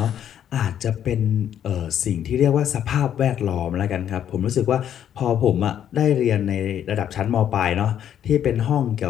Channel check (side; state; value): right; quieter; 9.9 dB